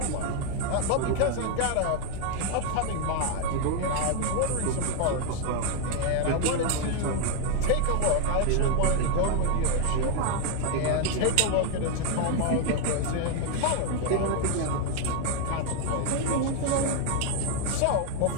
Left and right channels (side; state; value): both; different; correlation 0.01